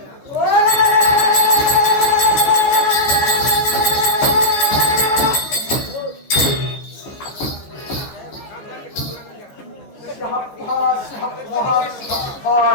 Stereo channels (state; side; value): late; right; 14 ms